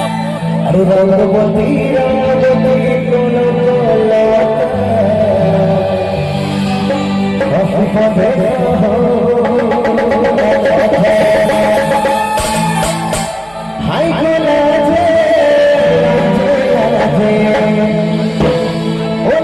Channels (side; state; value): right; noise; hum, 27 dB below the sound